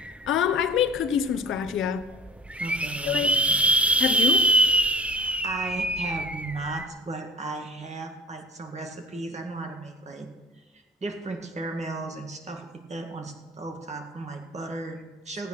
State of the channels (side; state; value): both; normal; correlation 0.44